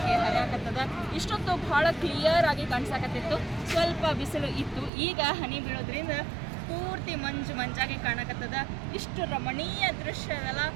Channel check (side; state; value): left; drops out; at 4.9 s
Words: ಹರಿಯಾಕತ್ತದ. ಇಷ್ಟೊತ್ತು ಭಾಳ ಕ್ಲಿಯರ್ ಆಗಿ ಕಾಣಿಸಾಕತ್ತಿತ್ತು, ಸ್ವಲ್ಪ ಬಿಸಿಲು ಇತ್ತು. ಈಗ ಹನಿ ಬೀಳೋದ್ರಿಂದ ಪೂರ್ತಿ ಮಂಜಾಗಿ ಕಾಣಕತ್ತದ. ಇಷ್ಟು ರಮಣೀಯ ದೃಶ್ಯ ಅದಲ್ಲ,